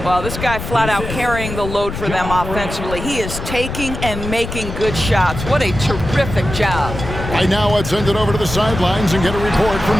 Well, this guy flat out carrying the load for them offensively. He is taking and making good shots. What a terrific job. Right now, let's send it over to the sidelines and get a report from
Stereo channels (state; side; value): noise; left; rumble, 7 dB below the sound